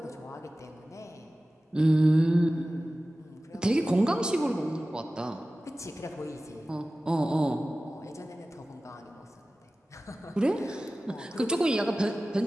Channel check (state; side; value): normal; both; correlation 0.96